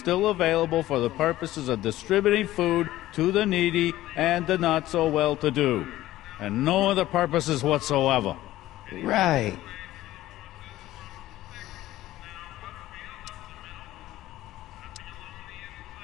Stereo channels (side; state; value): right; quieter; 15.3 dB